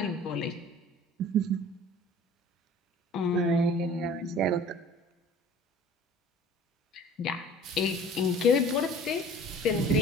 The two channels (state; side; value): normal; both; correlation 0.46